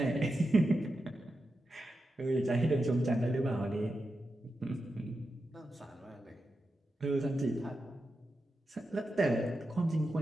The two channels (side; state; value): both; normal; correlation 0.89